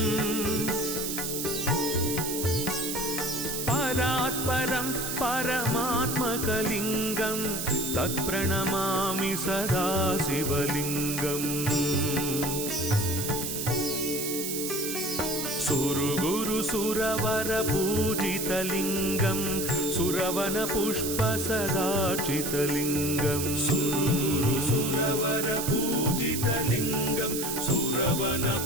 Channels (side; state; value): right; noise; hiss, 3 dB below the sound